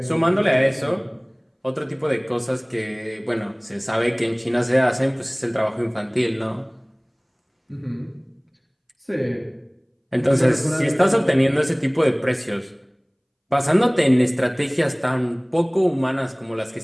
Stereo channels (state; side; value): identical; both; correlation 1.00